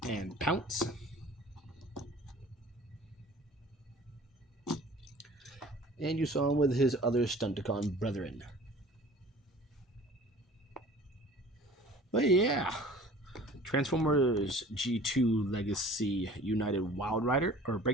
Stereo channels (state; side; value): normal; both; correlation 0.46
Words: and Pounce. And you saw him with his other Stunticon brethren. But yeah, Transformers G2 Legacy United Wild Rider, or